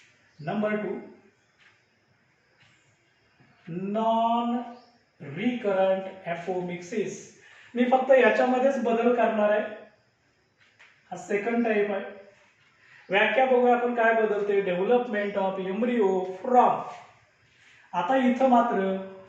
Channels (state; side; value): identical; both; correlation 1.00